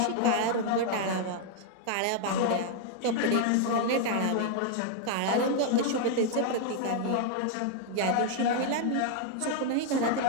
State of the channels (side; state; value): both; different; correlation 0.00